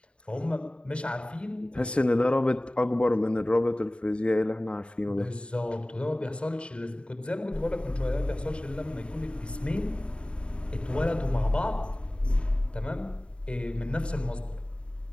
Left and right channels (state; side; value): late; right; 0.055 ms